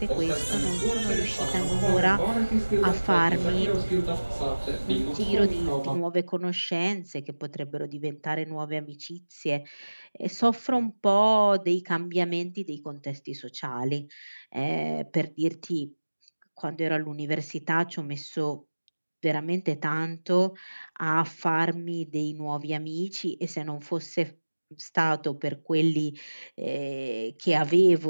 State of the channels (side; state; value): both; inverted; correlation -1.00